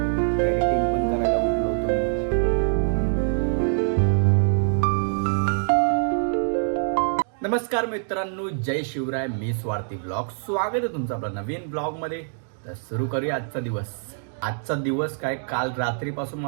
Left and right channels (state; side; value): silent; left; digital silence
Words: एडिटिंग पण करायला उठलो होतो मी. नमस्कार मित्रांनो, जय शिवराय. मी स्वार्थी ब्लॉग, स्वागत आहे तुमचं आपल्या नवीन ब्लॉगमध्ये. तर सुरू करूया आजचा दिवस. आजचा दिवस काय, काल रात्रीपासून